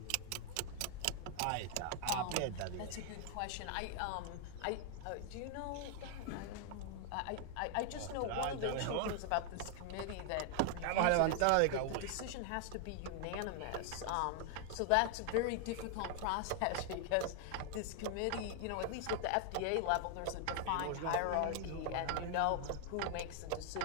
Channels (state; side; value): different; both; correlation 0.00